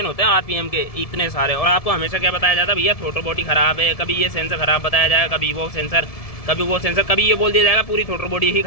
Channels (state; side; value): late; right; 1.7 ms